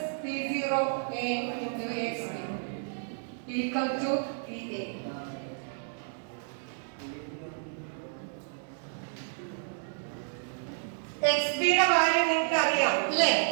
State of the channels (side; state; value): left; silent; digital silence